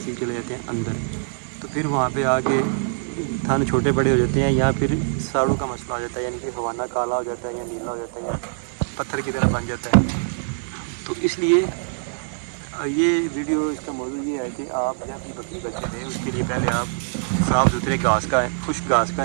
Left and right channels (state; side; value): silent; left; digital silence